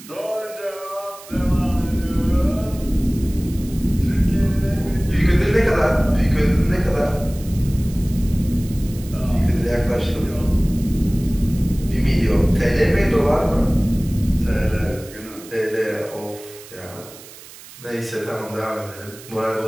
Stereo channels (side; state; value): right; noise; hiss, 18 dB below the sound